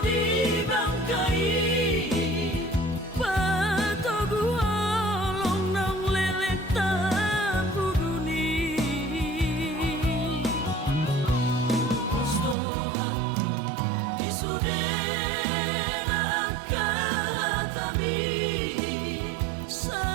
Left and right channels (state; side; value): drops out; left; at 12.6 s